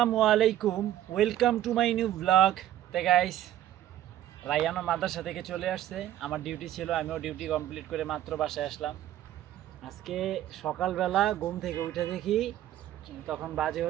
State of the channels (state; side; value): quieter; left; 12.6 dB